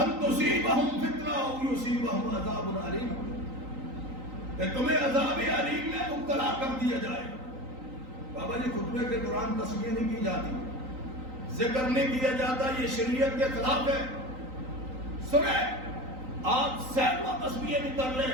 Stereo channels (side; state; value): left; late; 3.9 ms